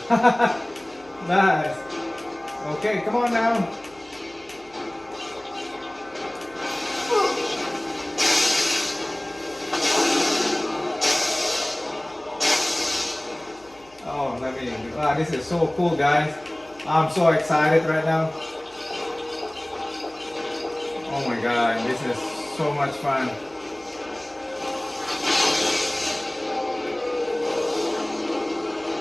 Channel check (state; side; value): noise; left; hum, 28 dB below the sound